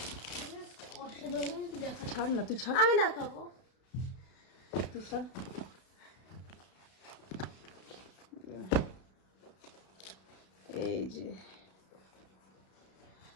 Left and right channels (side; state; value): right; late; 32 ms